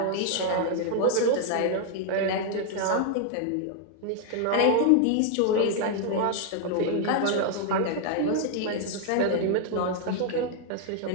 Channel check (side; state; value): both; different; correlation 0.00